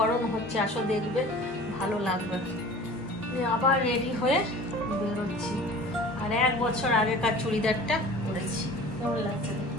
হচ্ছে, আসো দেখবে ভালো লাগবে। আবার রেডি হয়ে বেরোচ্ছি। আর 1 বছর আগেকার চুড়িদারটা পরেছি, কেমন লাগছে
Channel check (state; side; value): normal; both; correlation 0.43